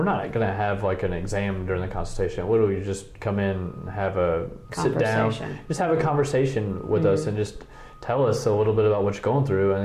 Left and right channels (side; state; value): both; identical; correlation 1.00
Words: not going to have like an exam during the consultation. Literally, you just come in, sit down, just have a conversation with us and just tell us a little bit about what you're going through, and